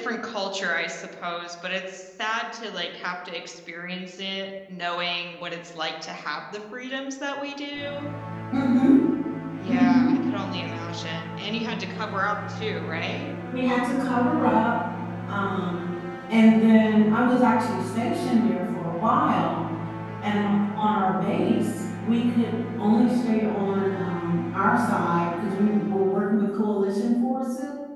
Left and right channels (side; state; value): both; identical; correlation 1.00